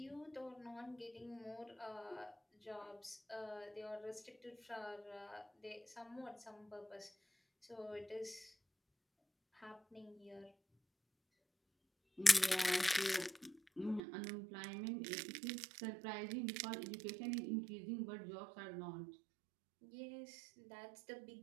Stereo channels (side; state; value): left; drops out; at 14.0 s